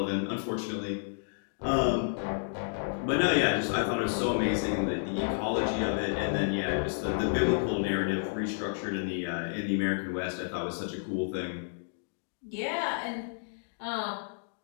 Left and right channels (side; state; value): right; silent; digital silence